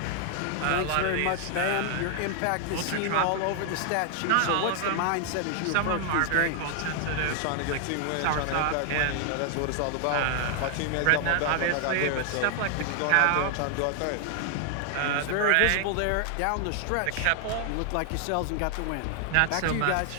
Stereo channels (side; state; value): both; different; correlation 0.00